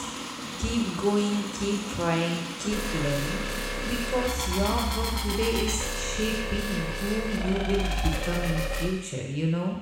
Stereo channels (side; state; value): both; identical; correlation 1.00